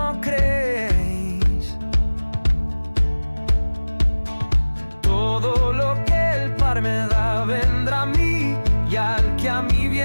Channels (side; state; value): both; inverted; correlation -1.00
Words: creéis. Todo lo que el Padre me da vendrá a mí, y al que a mí